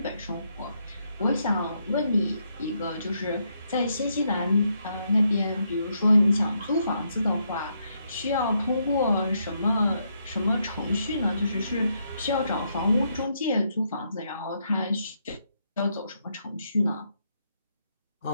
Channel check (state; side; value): inverted; both; correlation -0.77